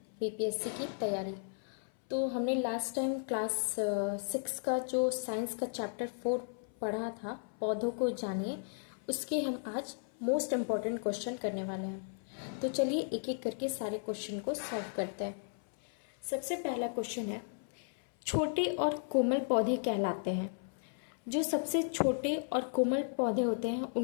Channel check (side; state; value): right; silent; 54 dB below the other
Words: BPSC की तैयारी। तो हमने लास्ट टाइम क्लास 6 का जो साइंस का चैप्टर 4 पढ़ा था, पौधों को जानिए, उसके हम आज मोस्ट इम्पॉर्टेंट क्वेश्चन करने वाले हैं। तो चलिए एक एक करके सारे क्वेश्चन को सॉल्व करते हैं। सबसे पहला क्वेश्चन है, छोटे और कोमल पौधे कहलाते हैं। जो सबसे छोटे और कोमल पौधे होते हैं